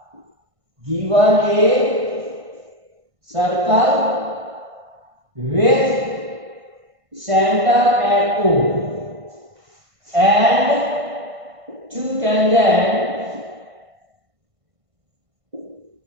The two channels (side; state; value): left; late; 1.5 ms